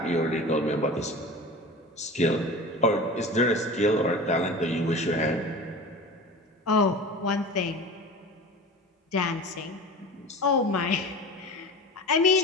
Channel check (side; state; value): both; normal; correlation 0.34